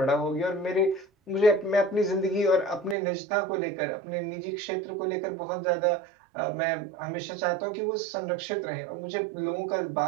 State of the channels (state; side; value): drops out; left; at 3.0 s